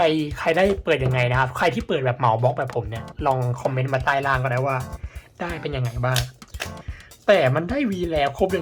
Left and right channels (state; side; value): identical; both; correlation 1.00